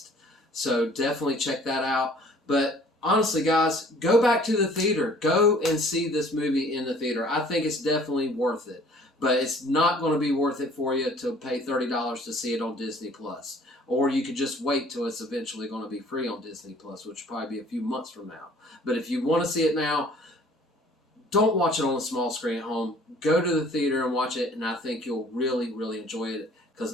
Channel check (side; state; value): both; normal; correlation 0.53